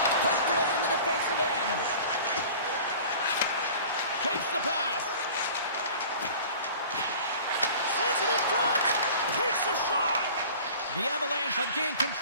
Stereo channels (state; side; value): inverted; both; correlation -0.43